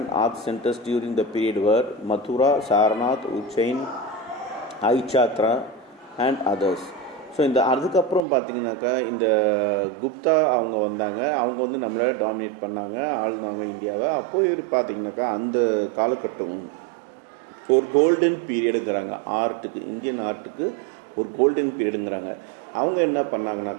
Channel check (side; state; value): left; drops out; at 8.2 s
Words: art centers during the period were Mathura, Sarnath, Ujjain, Aichatra and others. So இந்த அதுக்கப்புறம் பார்த்திங்கனாக்கா இந்த குப்தா அவங்க வந்தாங்க. அவங்க வந்து நம்மளை dominate பண்ணாங்க, ஆளுனாங்க இந்தியாவை. அப்போது பார்த்திங்கனாக்கா அந்த காலகட்டம் ஒரு கோல்டன் பீரியடுங்கிறாங்க ஆர்ட்டுக்கு, இந்தியன் ஆர்ட்டுக்கு ஒரு கோல்டன் பீரியடுங்கிறாங்க. அவங்க என்ன